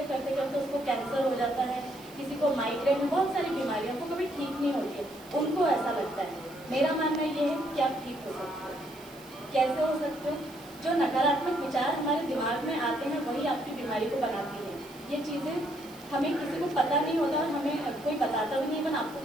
करते करते उसको कैंसर हो जाता है, किसी को माइग्रेन है, बहुत सारी बीमारियाँ वो कभी ठीक नहीं होती है, उनको ऐसा लगता है। मेरा मानना ये है कि आप ठीक हो सकते हो। कैसे हो सकते हो? जो नकारात्मक विचार हमारे दिमाग में आते हैं वही आपकी बीमारी को बनाती है। ये चीज़ें हमें किसी को पता नहीं होता और हमें कोई बताता भी नहीं, इवन आपको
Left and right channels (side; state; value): right; noise; hiss, 22 dB below the sound